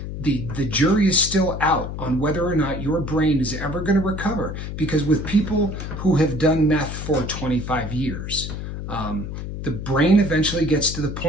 the jury is still out on whether or not your brain is ever going to recover. Because with people who have done meth for 25 years, the brain eventually gets to the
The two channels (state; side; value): noise; left; hum, 7 dB below the sound